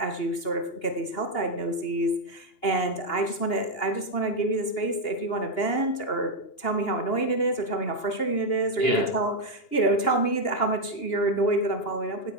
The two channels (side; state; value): right; late; 2.8 ms